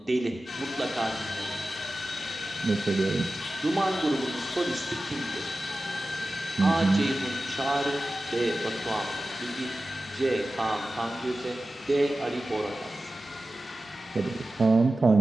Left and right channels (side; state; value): both; normal; correlation 0.95